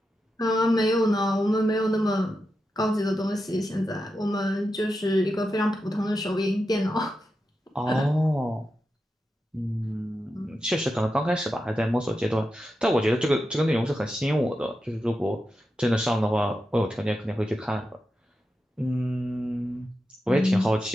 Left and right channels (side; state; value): both; normal; correlation 0.89